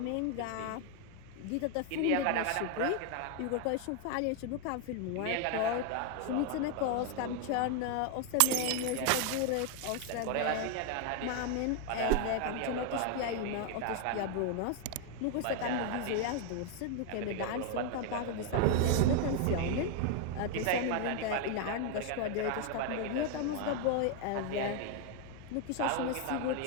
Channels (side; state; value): both; different; correlation 0.01